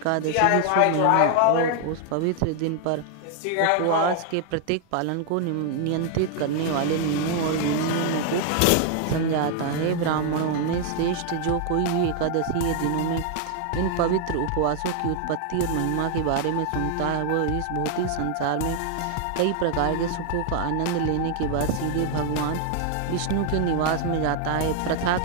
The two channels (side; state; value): both; different; correlation 0.00